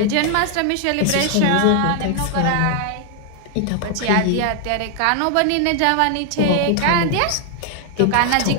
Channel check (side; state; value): both; different; correlation 0.00